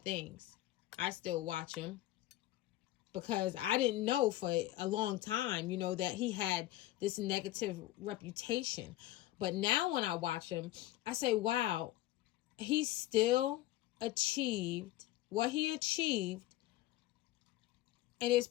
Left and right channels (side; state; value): right; quieter; 15.6 dB